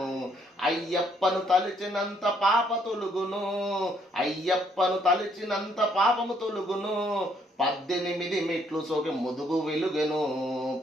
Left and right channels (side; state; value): both; normal; correlation 0.68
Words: అయ్యప్పను తలిచినంత పాప తొలుగును అయ్యప్పను తలిచినంత పాపము తొలుగును 18 మెట్లు సోకి ముదుగు వెలుగెను